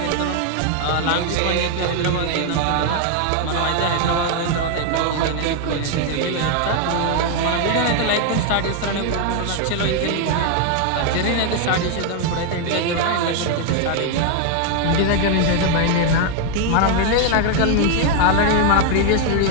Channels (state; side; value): different; both; correlation 0.01